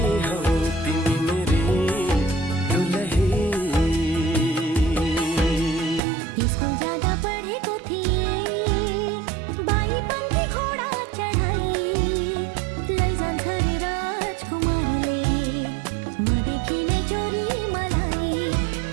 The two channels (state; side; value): drops out; left; at 6.0 s